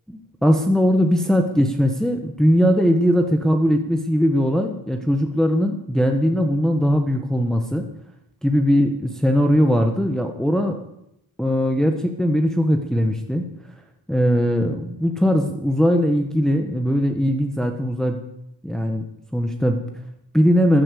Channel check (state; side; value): normal; both; correlation 0.88